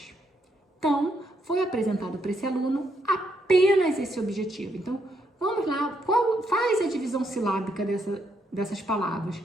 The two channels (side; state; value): both; normal; correlation 0.77